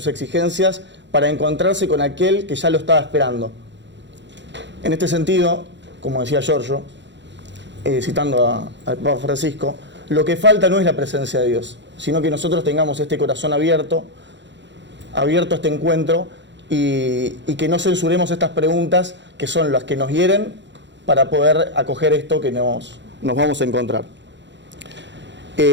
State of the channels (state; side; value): late; left; 0.52 ms